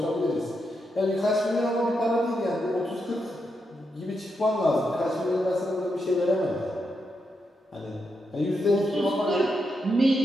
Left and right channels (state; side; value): normal; both; correlation 0.83